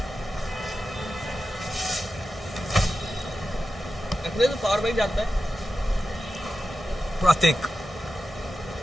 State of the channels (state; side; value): normal; both; correlation 0.92